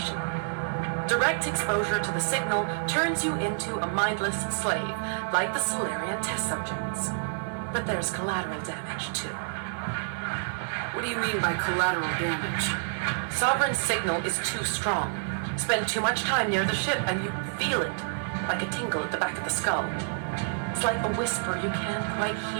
Direct exposure to the signal turns you into a mindless slave, like the Salarian test subjects. But there's collateral damage, too. What do you mean by collateral damage? Sovereign's signal is too strong. Spend too much time near the ship and you feel it, like a tingle at the back of the skull. It's like a whisper you can't quite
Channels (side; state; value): left; silent; 59 dB below the other